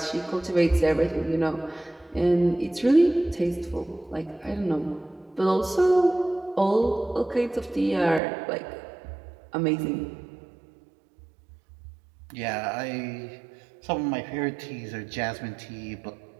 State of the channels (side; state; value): left; drops out; at 8.2 s